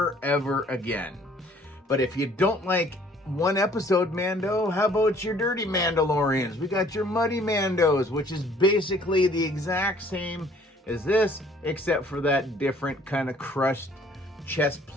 again. But if you don't like one episode Mando, how about your dirty Mandalorians? We got your muddy Mandos, which is basically the exact same as this, except for that different kind of crushed chest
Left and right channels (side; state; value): both; normal; correlation 0.58